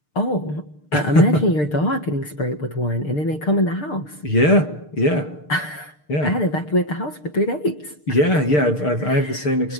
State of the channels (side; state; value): right; late; 6.6 ms